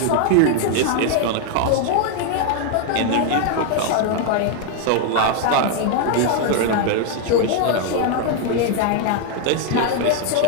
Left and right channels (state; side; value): different; both; correlation 0.00